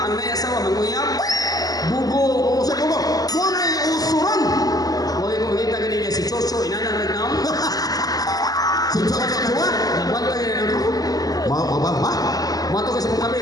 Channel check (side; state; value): right; late; 0.18 ms